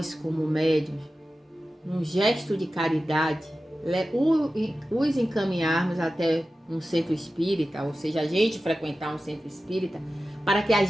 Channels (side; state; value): both; normal; correlation 0.94